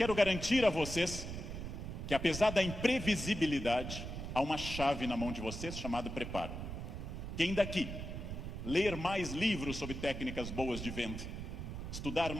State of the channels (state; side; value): noise; right; rumble, 6 dB below the sound